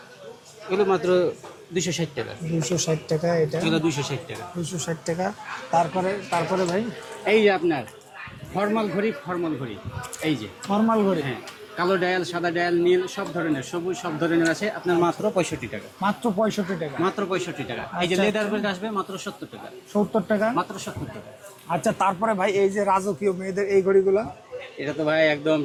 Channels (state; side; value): identical; both; correlation 1.00